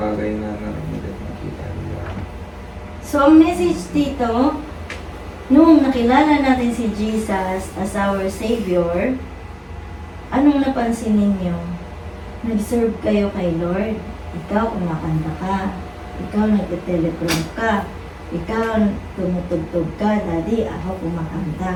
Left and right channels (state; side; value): identical; both; correlation 1.00